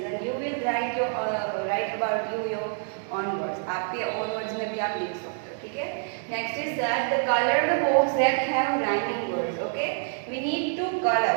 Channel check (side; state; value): left; silent; digital silence